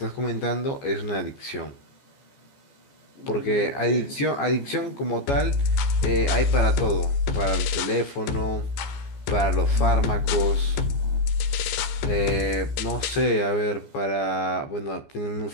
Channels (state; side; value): late; right; 14 ms